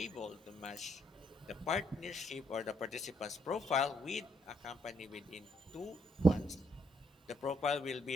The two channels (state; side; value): normal; both; correlation 0.74